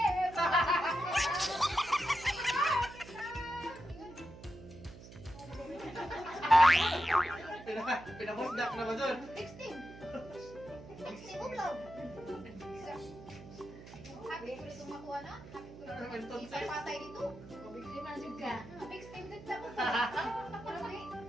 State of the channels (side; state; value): right; noise; hum, 16 dB below the sound